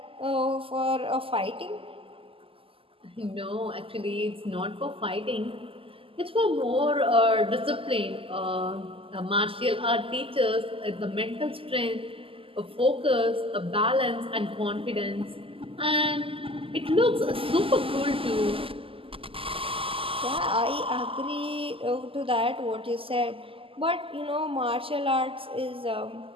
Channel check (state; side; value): late; left; 0.26 ms